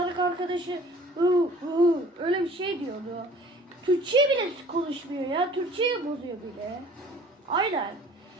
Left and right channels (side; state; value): both; normal; correlation 0.50